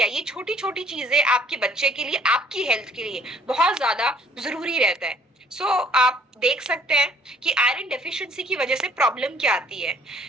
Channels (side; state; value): both; normal; correlation 0.58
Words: ये छोटी छोटी चीजें आपके बच्चे के लिए, आपकी हेल्थ के लिए बहुत ज्यादा जरूरी रहता है। सो आप देख सकते हैं कि आयरन डेफिशिएंसी की वजह से प्रॉब्लम क्या आती है।